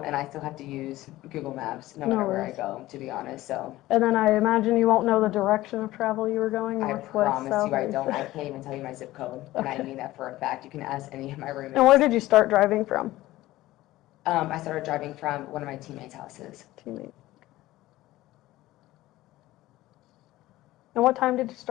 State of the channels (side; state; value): right; quieter; 16.7 dB